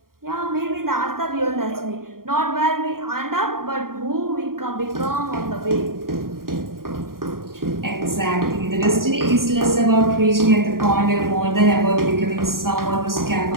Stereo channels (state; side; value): late; left; 0.92 ms